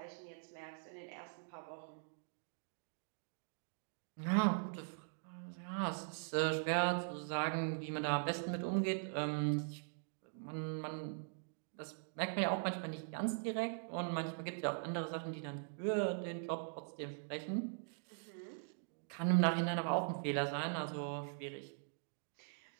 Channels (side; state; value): left; silent; digital silence